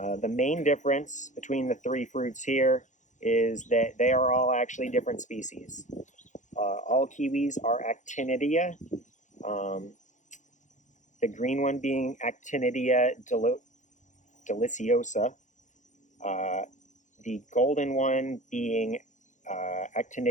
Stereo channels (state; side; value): late; right; 0.35 ms